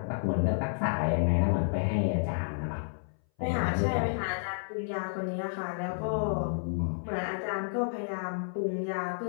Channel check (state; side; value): silent; right; 57 dB below the other